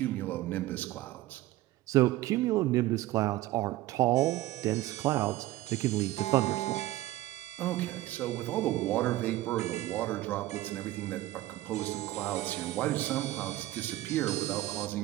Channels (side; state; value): left; quieter; 16.4 dB